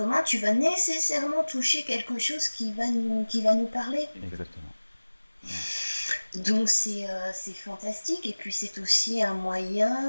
tu vas nécessairement toucher quelque chose qui va nous parler. Exactement. Donc c'est fantastique, et puis c'est aussi un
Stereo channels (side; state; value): both; inverted; correlation -1.00